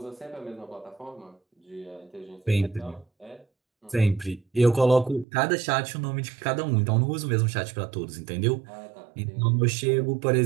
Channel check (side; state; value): left; drops out; at 5.2 s